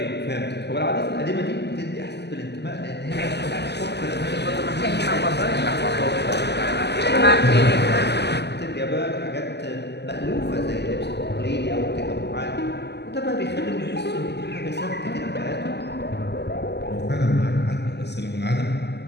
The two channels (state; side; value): late; right; 0.50 ms